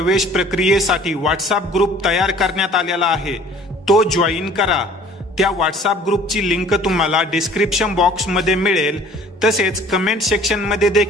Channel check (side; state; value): both; normal; correlation 0.51